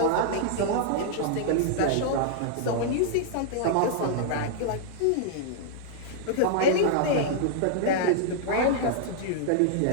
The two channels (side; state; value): both; different; correlation -0.01